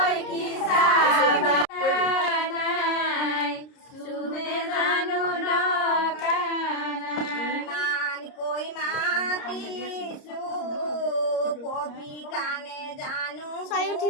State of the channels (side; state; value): right; late; 30 ms